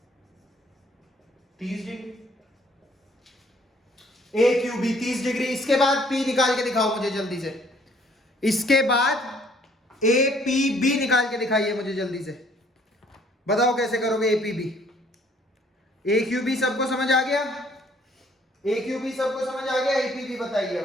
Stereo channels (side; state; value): both; normal; correlation 0.61